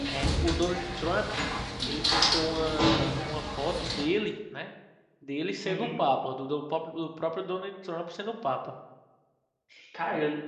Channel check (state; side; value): identical; both; correlation 1.00